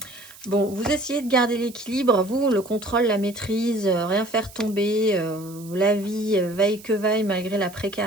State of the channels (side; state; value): right; noise; hiss, 20 dB below the sound